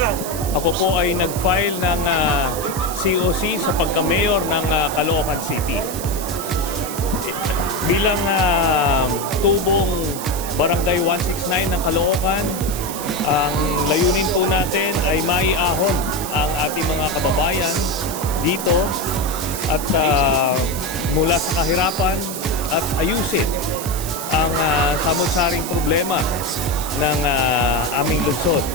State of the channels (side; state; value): right; noise; hiss, 9 dB below the sound